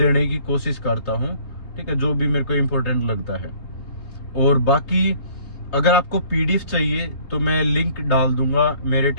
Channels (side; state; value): right; late; 3.2 ms